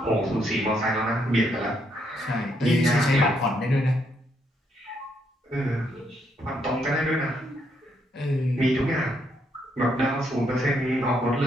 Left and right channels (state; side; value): normal; both; correlation 0.75